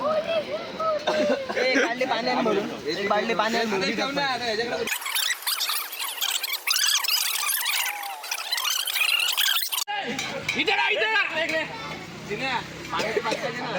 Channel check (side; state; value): both; identical; correlation 1.00